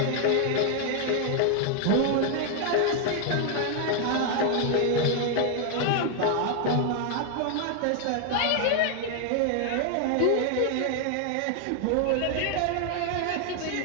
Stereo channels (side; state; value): both; different; correlation 0.00